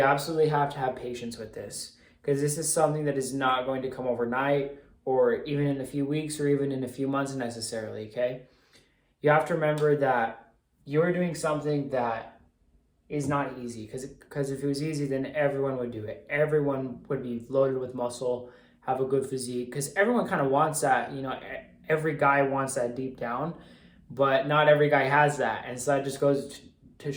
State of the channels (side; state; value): both; identical; correlation 1.00